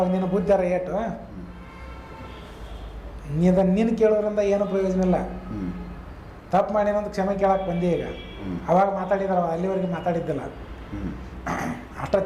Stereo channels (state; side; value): identical; both; correlation 1.00